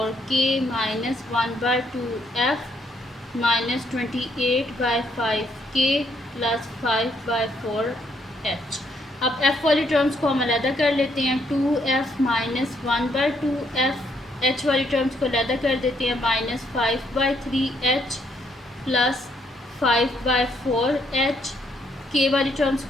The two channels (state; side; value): normal; both; correlation 0.72